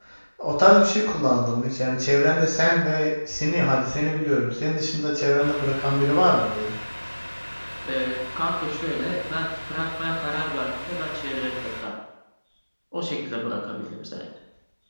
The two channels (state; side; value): inverted; both; correlation -1.00